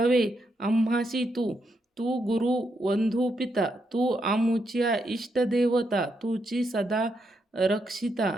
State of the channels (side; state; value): both; normal; correlation 0.80